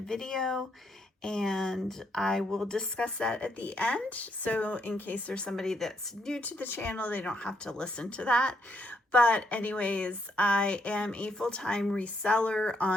and I will discuss that at the end. So in case there's somebody that's new to the channel, they don't have to listen to that. But anyways, I am a full-time reseller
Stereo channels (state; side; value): normal; both; correlation 0.75